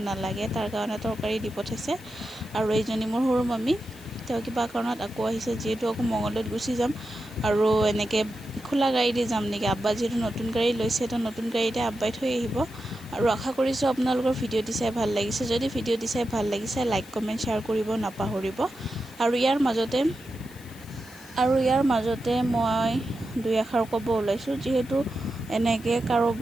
নালাগে, তাৰ কাৰণে তৰকাৰী দি পঠাইছে। আৰু এইজনী মোৰ সৰু মামী, তেওঁ কিবা কাৰণত আকৌ আহিছে, যিহেতু আকৌ মঙলদৈত গুচি যাম। আৰু এনেকৈ খোলা গাড়ী দি যাম নেকি, আব্বা যিহেতু নতুন গাড়ী লৈছে, তো নতুন গাড়ীতে আব্বাই থৈ আহিব। আৰু আশা কৰিছোঁ আপোনালোকৰ ভিডিঅ'টি চাই ভাল লাগিছে। যদি ভিডিঅ'টি চাই ভাল লাগিছে, লাইক কমেণ্ট শ্বেয়াৰ কৰিব নাপাহৰিব। আৰু ইয়াৰ মাজতে মই দুই এষাৰ ক'ব ওলাইছোঁ, যিহেতু এনেকৈ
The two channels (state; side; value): noise; left; hiss, 22 dB below the sound